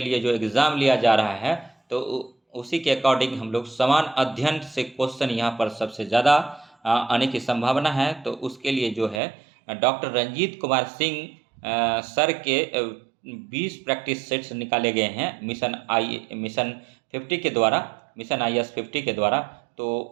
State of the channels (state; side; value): drops out; left; at 9.2 s